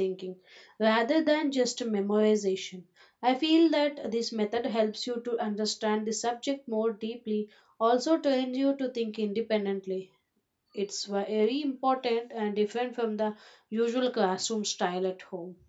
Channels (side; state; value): both; identical; correlation 1.00